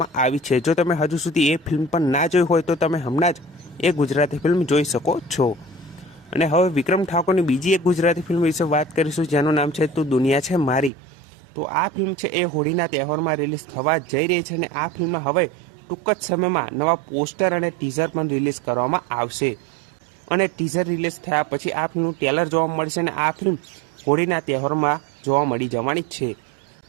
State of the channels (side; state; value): left; drops out; at 10.9 s